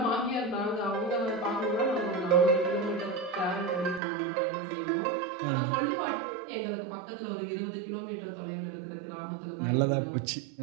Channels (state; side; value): drops out; left; at 4.0 s